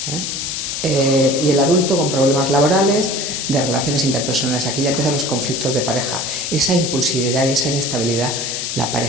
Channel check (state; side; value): noise; left; hiss, 3 dB below the sound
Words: y el adulto con problemas laborales, de relaciones interpersonales. Aquí ya empiezan los conflictos de pareja. Esa impulsividad y esa inestabilidad, la